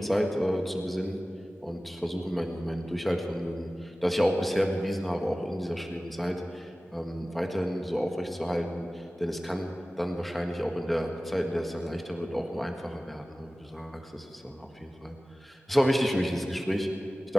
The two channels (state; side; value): normal; both; correlation 0.97